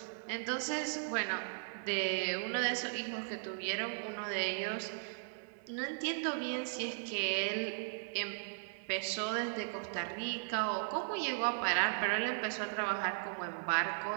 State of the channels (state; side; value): silent; left; 53 dB below the other